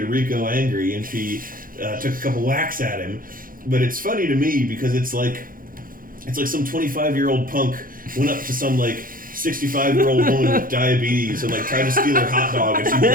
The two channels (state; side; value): late; left; 0.41 ms